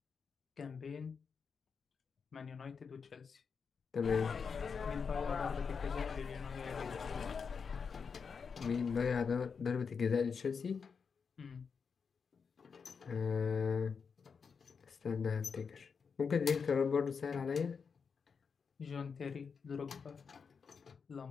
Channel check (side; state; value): right; quieter; 5.8 dB